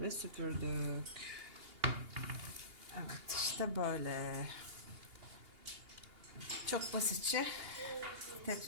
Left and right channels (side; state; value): left; late; 2.8 ms